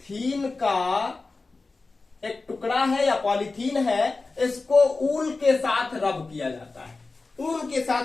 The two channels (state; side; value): quieter; right; 3.7 dB